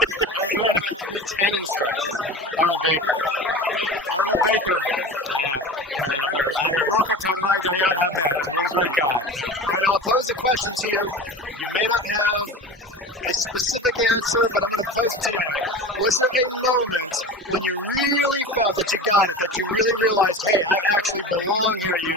remember my 310 instructor, Arnold Baker. Arnold Baker. I heard. Broca Tadanai Dayan Hamet. What a great guy. All right, now I'll pose a question to you. You may not have a specific answer, but I'm going to pose it to you anyway. Was there a moment when you really felt that you got it, that you really realized, hey, I actually belong here at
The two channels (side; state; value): both; normal; correlation 0.33